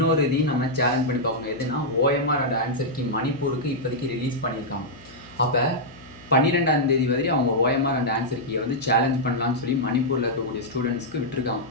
இதையும் நம்ம சேலஞ்ச் பண்ணி பார்க்கணும். எதுனா ஓஎம்ஆர் அண்ட் ஆன்சர் கீ மணிப்பூருக்கு இப்போதைக்கு ரிலீஸ் பண்ணியிருக்காங்க. அப்போ 12ஆம் தேதி வரையும் அவங்க ஓஎம்ஆர் அண்ட் ஆன்சர் கீயை வந்து சேலஞ்ச் பண்ணலான்னு சொல்லி மணிப்பூரில் இருக்கக்கூடிய ஸ்டூடெண்ட்ஸ்க்கு விட்டுருக்காங்க.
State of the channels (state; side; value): noise; left; hum, 22 dB below the sound